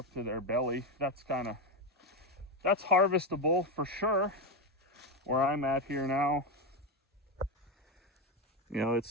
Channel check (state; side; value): normal; both; correlation 0.12